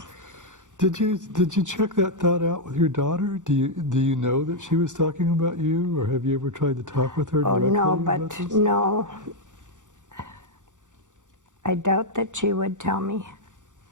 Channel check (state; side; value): late; left; 0.86 ms